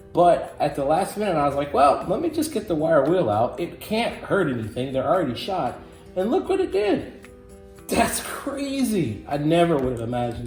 But at the last minute, I was like, well, let me just get the wire wheel out. It can't hurt anything, they're already shot. And look what it did. That's crazy. I never would have imagined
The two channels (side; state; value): both; identical; correlation 1.00